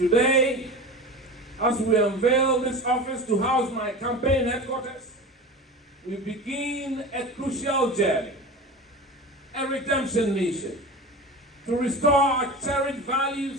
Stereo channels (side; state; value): both; normal; correlation 0.31